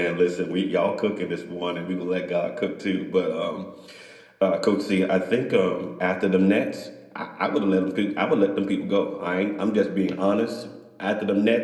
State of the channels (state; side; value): identical; both; correlation 1.00